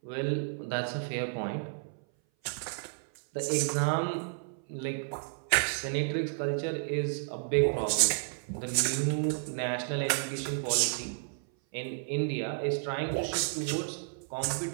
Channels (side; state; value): left; silent; 57 dB below the other